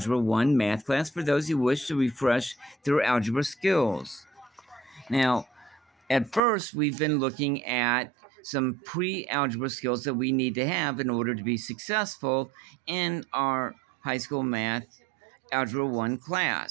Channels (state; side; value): drops out; left; at 6.4 s